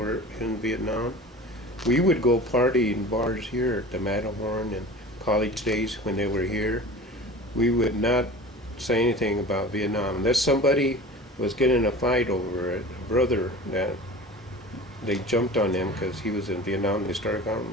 in Vietnam, we would go party in bars here at the Matterhorn and college days when they were here. We would not say anything about Vietnam unless somebody was getting in a fight over it. A brother that they jumped on him because he was in Vietnam. They started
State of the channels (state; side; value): normal; both; correlation 0.38